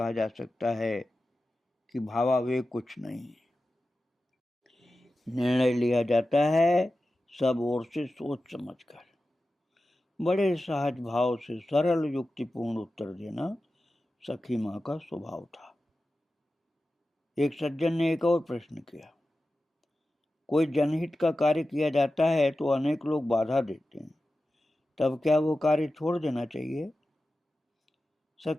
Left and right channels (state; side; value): normal; both; correlation 0.93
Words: जा सकता है कि भावावेग कुछ नहीं। निर्णय लिया जाता है सब ओर से सोच समझकर। बड़े सहज भाव से सरल युक्तिपूर्ण उत्तर देना सखी माँ का स्वभाव था। एक सज्जन ने एक और प्रश्न किया, कोई जनहित का कार्य किया जाता है तो अनेक लोग बाधा देते हैं, तब क्या वो कार्य छोड़ देना चाहिए?